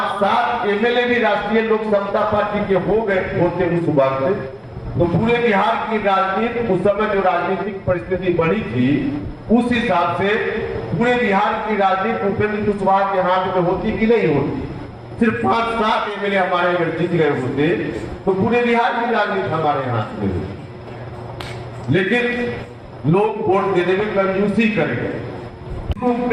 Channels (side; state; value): both; identical; correlation 1.00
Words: सात एमएलए भी राष्ट्रीय लोक समता पार्टी के हो गए होते उस वक्त, तो पूरे बिहार की राजनीति उस समय जो राजनीतिक परिस्थिति बनी थी उस हिसाब से पूरे बिहार की राजनीति उपेंद्र कुशवाहा के हाथ में होती कि नहीं होती। सिर्फ 5-7 एमएलए हमारे अगर जीत गए होते तो पूरे बिहार की राजनीति हमारे हाथ में होती, लेकिन लोग वोट देने में कंजूसी करेंगे।